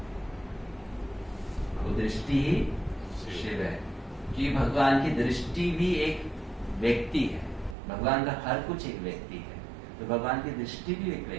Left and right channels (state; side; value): drops out; left; at 7.8 s